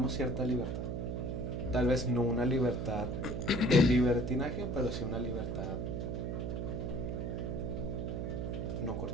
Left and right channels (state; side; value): noise; right; hum, 2 dB below the sound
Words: cierta libertad. Tal vez no una libertad de libertinaje, pero sí una libertad no